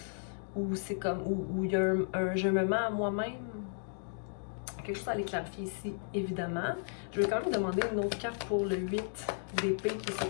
ou c'est comme, où il y a un je me mets à moi-même. Quelque chose à aller clarifier ici, évidemment. Je vais quand même demander une autre carte pour le 8 d'épée qui est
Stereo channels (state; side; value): silent; right; digital silence